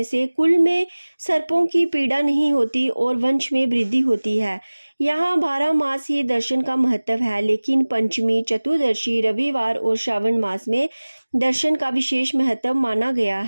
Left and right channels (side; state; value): both; inverted; correlation -1.00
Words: से कुल में सर्पों की पीड़ा नहीं होती और वंश में वृद्धि होती है। यहाँ 12 मास ही दर्शन का महत्व है, लेकिन पंचमी, चतुर्दशी, रविवार और श्रावण मास में दर्शन का विशेष महत्व माना गया